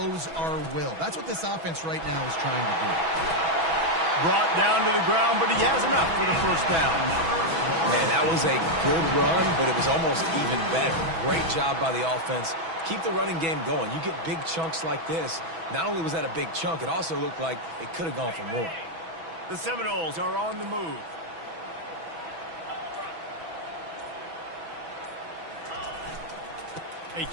our will? That's what this offense right now is trying to do. Brought down to the ground, but he has enough for the first down. Man, that was a good run, but it was almost even better. Great job by the offense. Keep the running game going. You get big chunks like this. Not only was that a big chunk, it also looked like it could have gone for more. The Seminoles are on the move. They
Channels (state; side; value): late; left; 6.1 ms